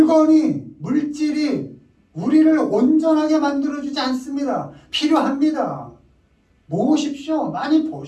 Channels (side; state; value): both; identical; correlation 1.00